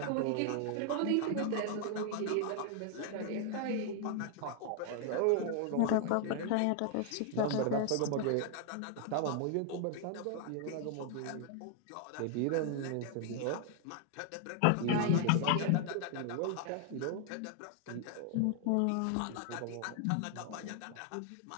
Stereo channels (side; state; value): both; different; correlation 0.00